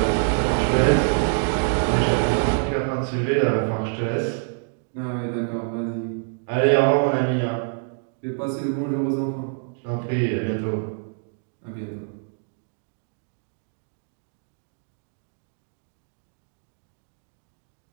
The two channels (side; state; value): left; silent; digital silence